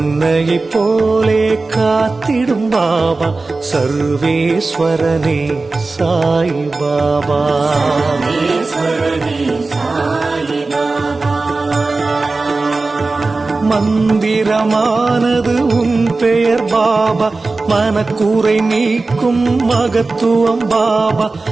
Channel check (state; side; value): quieter; left; 3.6 dB